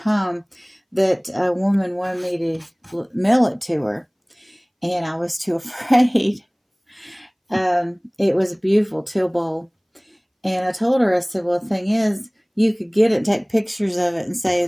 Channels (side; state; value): both; identical; correlation 1.00